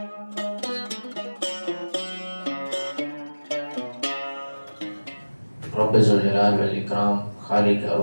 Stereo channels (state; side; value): inverted; both; correlation -1.00